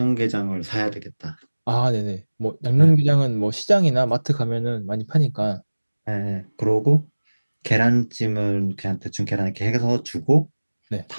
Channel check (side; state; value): both; inverted; correlation -1.00